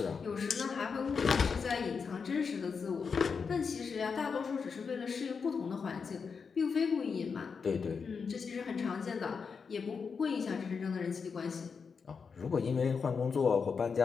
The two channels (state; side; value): quieter; right; 5.6 dB